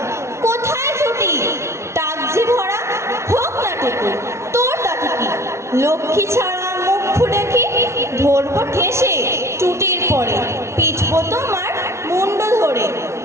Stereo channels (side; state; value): left; late; 0.13 ms